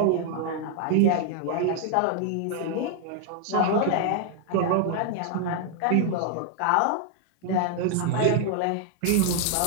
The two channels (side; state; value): both; different; correlation 0.00